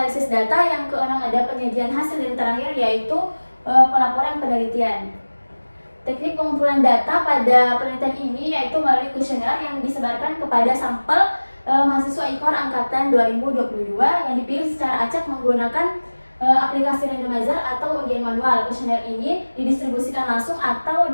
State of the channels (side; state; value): both; inverted; correlation -1.00